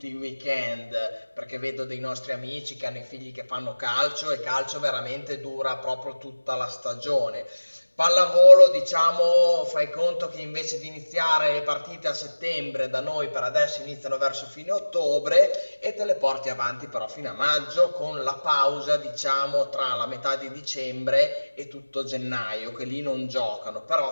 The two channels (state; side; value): inverted; both; correlation -1.00